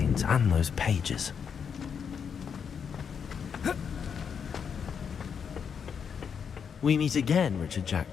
and those pages. We meet again, Richard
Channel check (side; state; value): right; quieter; 7.0 dB